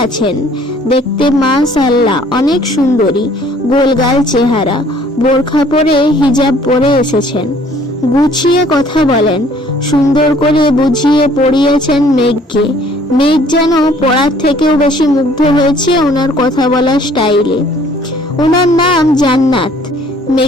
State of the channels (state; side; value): normal; both; correlation 0.57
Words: আছেন। দেখতে মাশাআল্লাহ অনেক সুন্দরী, গোলগাল চেহারা, বোরখা পরে হিজাব পরে এসেছেন। গুছিয়ে কথা বলেন, সুন্দর করে বুঝিয়ে পড়িয়েছেন মেঘকে। মেঘ যেন পড়ার থেকেও বেশি মুগ্ধ হয়েছে ওনার কথা বলার স্টাইলে। ওনার নাম জান্নাত।